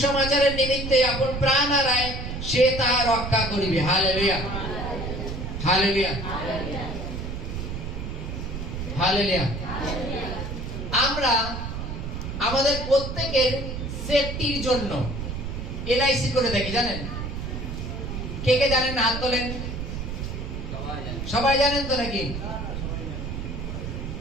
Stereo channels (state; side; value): noise; right; rumble, 5 dB below the sound